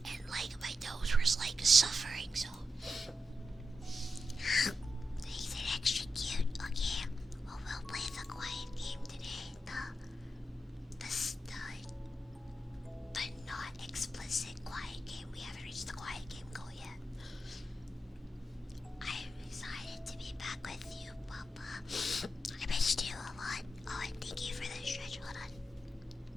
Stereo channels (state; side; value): normal; both; correlation 0.88